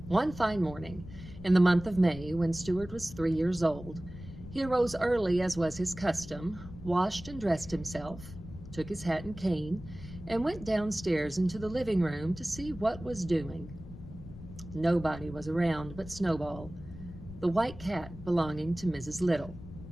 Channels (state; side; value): noise; left; rumble, 14 dB below the sound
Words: One fine morning in the month of May, when Stuart was 3 years old, he arose early as was his custom, washed and dressed himself, took his hat and cane, and went downstairs into the living room to see what was doing. Nobody was around but Snowball, the white cat belonging to Mrs. Little.